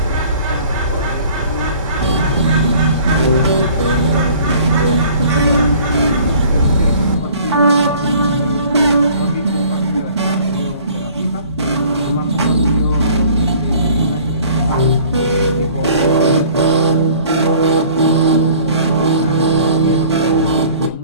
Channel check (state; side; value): inverted; both; correlation -0.51